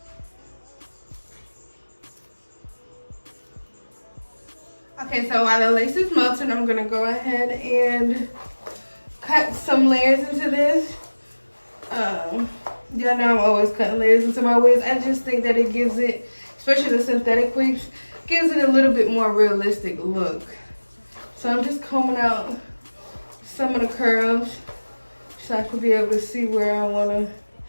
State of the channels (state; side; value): inverted; both; correlation -1.00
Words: Okay, so while the lace is melting, I'm going to go ahead and cut some layers into this. Y'all know I'm always cutting layers into my wigs. I just think that it gives it, especially the synthetic wigs, gives it a little bit more realistic look. So I'm just combing out some of the curls so I can be able to see where I want to